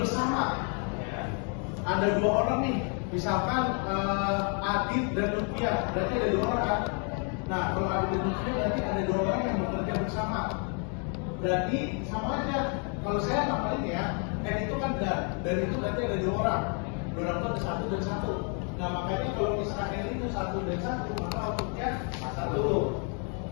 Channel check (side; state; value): right; quieter; 39.4 dB